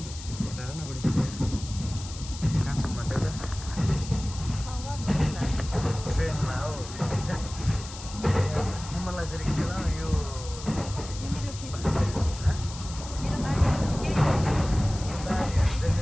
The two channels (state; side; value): noise; left; hiss, 13 dB below the sound